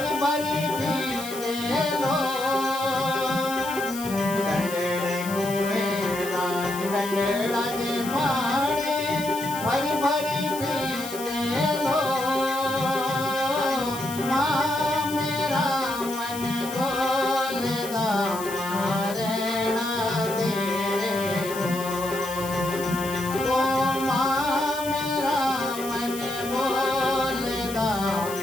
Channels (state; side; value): noise; left; hiss, 11 dB below the sound